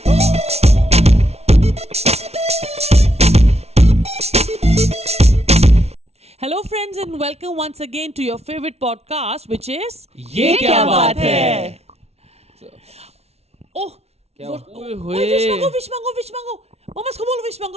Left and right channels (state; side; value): late; left; 0.31 ms